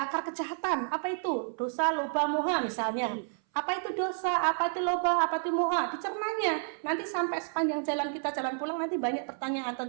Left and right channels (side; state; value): left; silent; 58 dB below the other